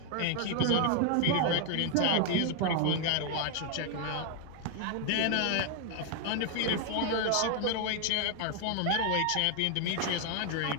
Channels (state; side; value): different; both; correlation 0.00